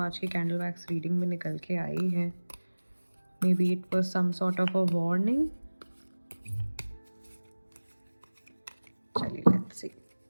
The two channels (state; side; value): inverted; both; correlation -1.00